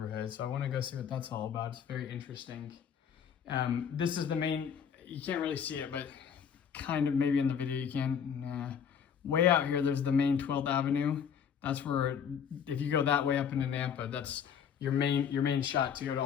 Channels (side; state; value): right; quieter; 7.7 dB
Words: so I wanna go see what that's all about. It's very interesting. This is the main, you can't really see it, but kind of maybe in the video you can. Nah. Way out here, there's the main 12th Avenue. That's where, if you go that way up into Nampa, that's your main shot to go to